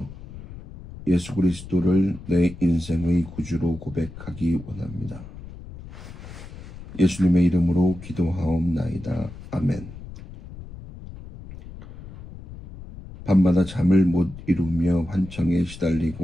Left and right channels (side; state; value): left; noise; rumble, 14 dB below the sound